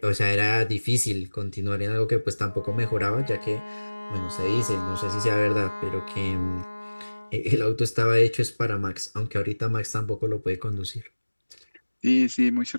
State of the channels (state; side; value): inverted; both; correlation -1.00